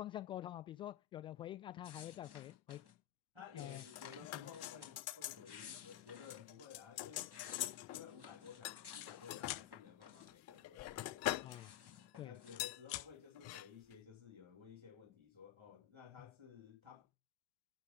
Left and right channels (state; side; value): quieter; right; 12.6 dB